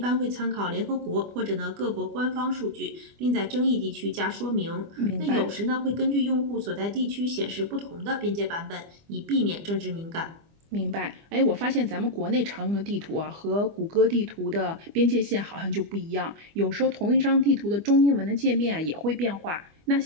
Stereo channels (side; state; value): left; late; 25 ms